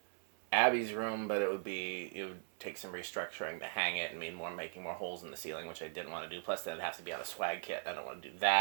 Abby's room, but it would take some restructuring to hang it and making more holes in the ceiling, which I didn't want to do. Plus, then it'd have to be on a swag kit. I don't want to do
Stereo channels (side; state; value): left; silent; 52 dB below the other